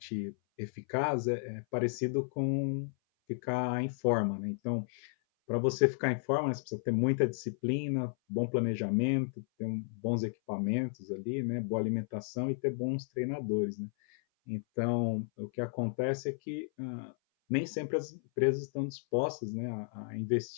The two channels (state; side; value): silent; right; 56 dB below the other